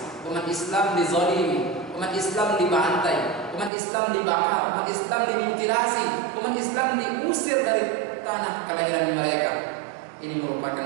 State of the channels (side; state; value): left; drops out; at 3.7 s